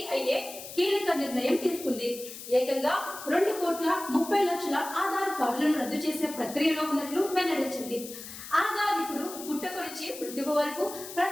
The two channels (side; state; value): left; noise; hiss, 12 dB below the sound